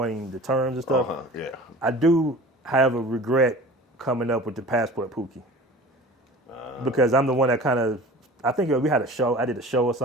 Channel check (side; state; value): both; normal; correlation 0.40